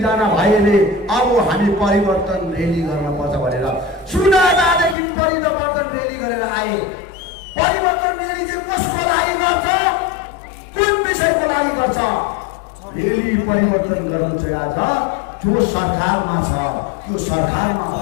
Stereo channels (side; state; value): right; drops out; at 5.0 s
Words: जना भाइले अब हामी परिवर्तन रेली गर्न पर्छ भनेर सुनादादेखि परिवर्तन रेली गरेर आए। परिवर्तन रेली चाहिँ कसको लागि गर्छ कुन विषयको लागि गर्छ? रेली परिवर्तन गर्नु चाहिँ आज जो सरकारमा छ त्यो सरकारमा